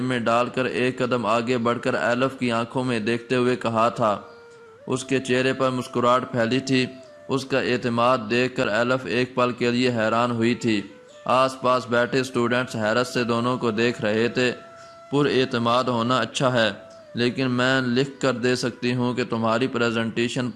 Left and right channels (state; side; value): identical; both; correlation 1.00